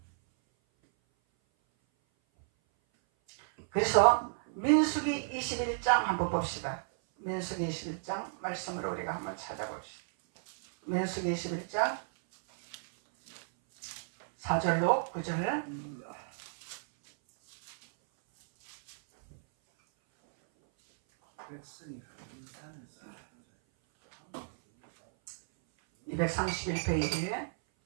그래서 민수기 21장 한번 봅시다. 민수기 21장 말씀을 우리가 한번 찾아봅시다. 민수기 21장 4절로 9절 231페이지에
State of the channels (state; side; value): silent; left; 56 dB below the other